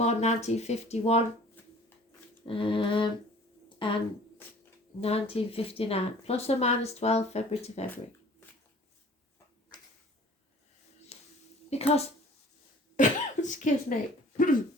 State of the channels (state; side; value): normal; both; correlation 0.49